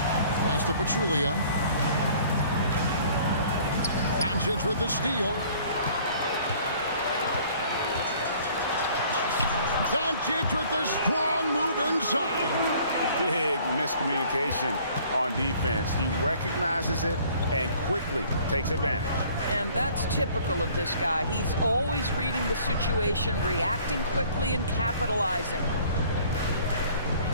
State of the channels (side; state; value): both; inverted; correlation -0.55